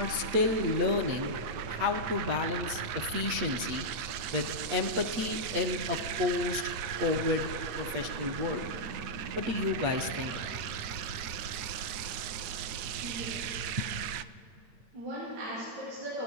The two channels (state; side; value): late; left; 8.8 ms